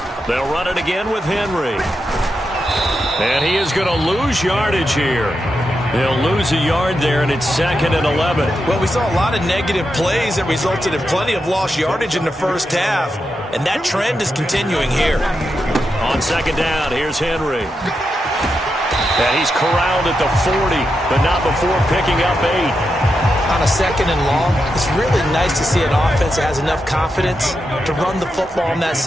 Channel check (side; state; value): both; normal; correlation 0.86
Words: They'll run it again with Henry. And he is going to lose yardage here. They'll lose a yard there, and it's second and 11. Well, we saw a lot of negative plays that resulted in plenty of lost yardage in the first half, and that trend is continuing here. On second down, here's Henry. And he's corralled at the 40, but not before picking up 8. On a second and long, it's really nice to see an offense that has enough confidence to run the football in that